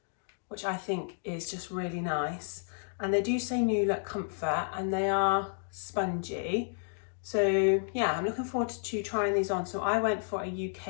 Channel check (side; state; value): right; silent; digital silence